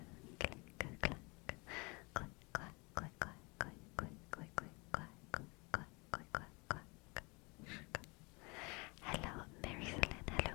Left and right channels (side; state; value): right; quieter; 28.4 dB